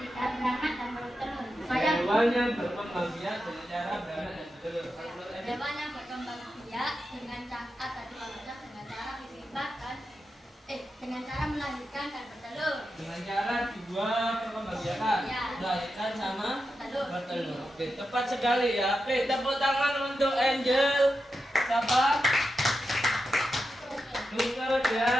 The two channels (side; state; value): both; normal; correlation 0.89